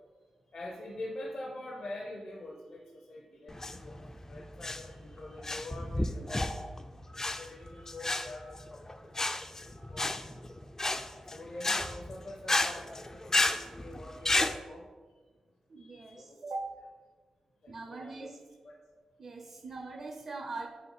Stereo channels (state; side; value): normal; both; correlation 0.83